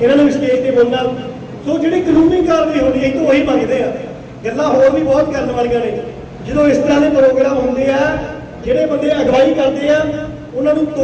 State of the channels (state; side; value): identical; both; correlation 1.00